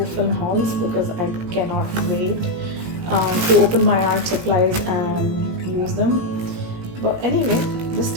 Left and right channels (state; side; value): late; left; 17 ms